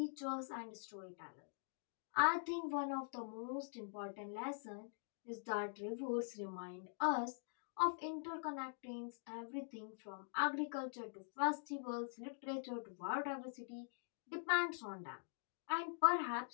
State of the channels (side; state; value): right; silent; digital silence